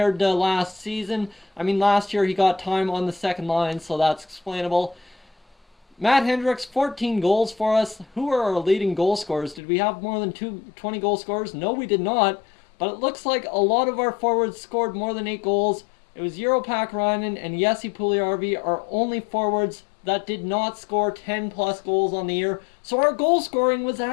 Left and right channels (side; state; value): right; drops out; at 9.6 s